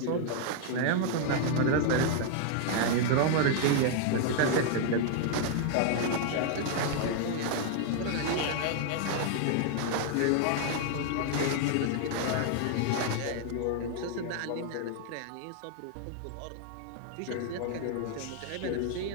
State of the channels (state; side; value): different; both; correlation 0.00